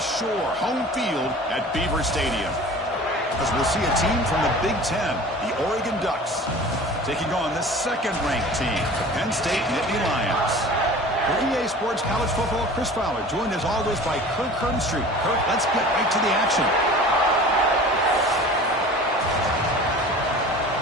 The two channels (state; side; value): normal; both; correlation 0.41